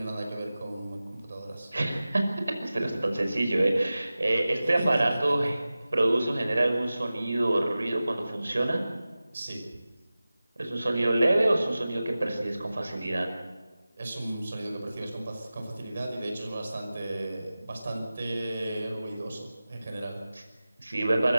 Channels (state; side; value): inverted; both; correlation -0.96